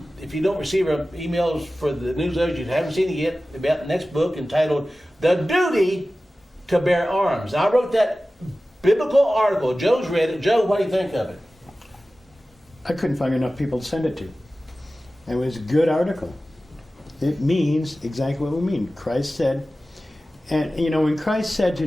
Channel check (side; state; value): both; normal; correlation 0.96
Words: If you don't receive our emails for the newsletters, you haven't seen it yet, about the next book entitled "The Duty to Bear Arms." I wrote that biblical article. Joe's read it. Joe, what do you think of it? I couldn't find enough people to send it to. It was a good article. It means exactly what we mean. Christ said, and you know, when Christ said